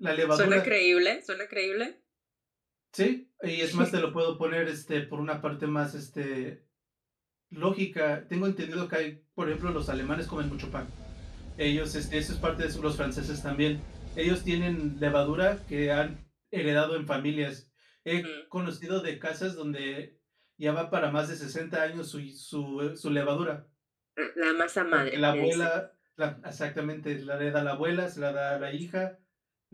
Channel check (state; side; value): identical; both; correlation 1.00